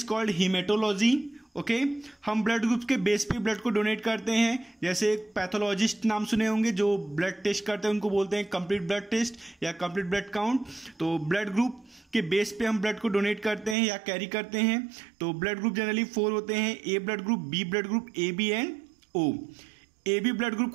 called haematology, okay. हम ब्लड ग्रुप्स के बेस पे ब्लड को डोनेट करते हैं। जैसे एक पैथोलॉजिस्ट नाम सुने होंगे जो ब्लड टेस्ट करते हैं, उनको बोलते हैं कंप्लीट ब्लड टेस्ट या कंप्लीट ब्लड काउंट। तो ब्लड ग्रुप के बेस पे हम ब्लड को डोनेट करते हैं या कैरी करते हैं। तो ब्लड ग्रुप जनरली 4 होते हैं, A blood group, B blood group, A B and O. A B blood group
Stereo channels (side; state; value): left; drops out; at 13.8 s